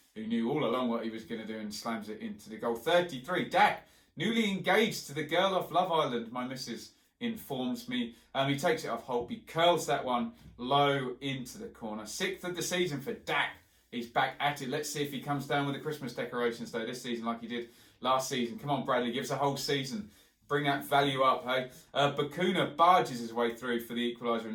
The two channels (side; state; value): both; identical; correlation 1.00